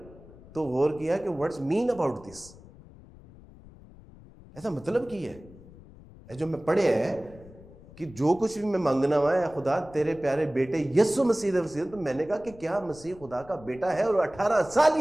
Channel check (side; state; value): left; noise; rumble, 21 dB below the sound